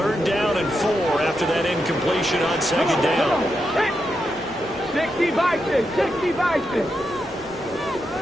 down and 4 after that incompletion on 2nd down. 60 vices, 60 vices.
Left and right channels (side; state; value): both; normal; correlation 0.85